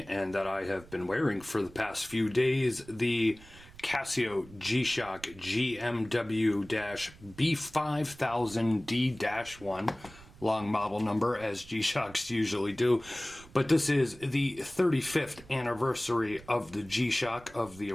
and that I have been wearing for the past few days, the Casio G-Shock GMW-B5000D-1, long model number as G-Shocks usually do, but this is the 35th anniversary of the G-Shock, of the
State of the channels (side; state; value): right; noise; rumble, 21 dB below the sound